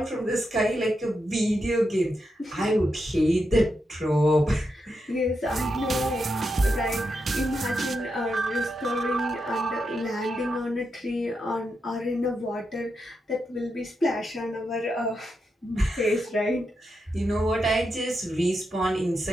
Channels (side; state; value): both; normal; correlation 0.85